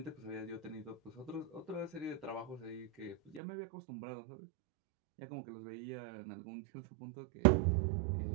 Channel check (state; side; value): drops out; left; at 3.4 s